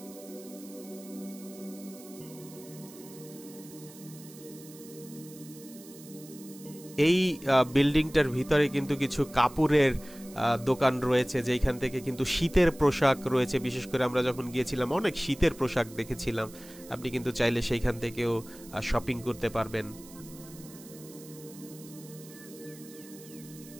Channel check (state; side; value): noise; right; hiss, 19 dB below the sound